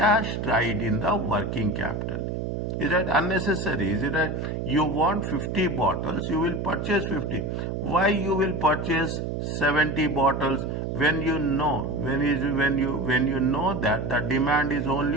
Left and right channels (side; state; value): right; noise; hum, 3 dB below the sound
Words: tied in the working capital. Is that unnecessary? Is it that you want 50 bottles, you will purchase 50. Why you will purchase 70 bottles when you know that the demand is